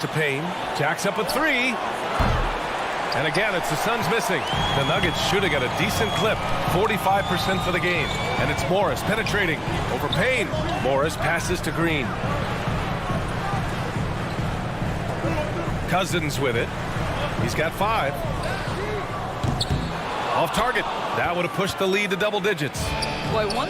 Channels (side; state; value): both; identical; correlation 1.00